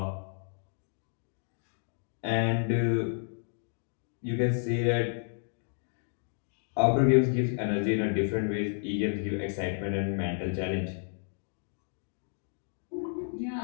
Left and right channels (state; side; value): silent; right; digital silence